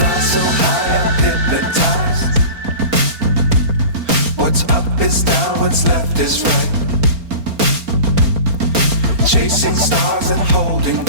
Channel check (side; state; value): left; late; 4.3 ms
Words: So high I'm hypnotized. What's up is down, what's left is right. Chasing stars and holding